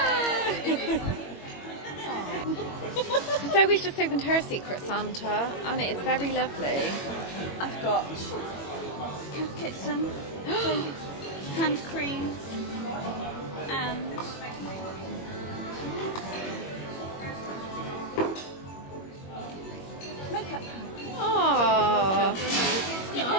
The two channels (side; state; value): right; late; 21 ms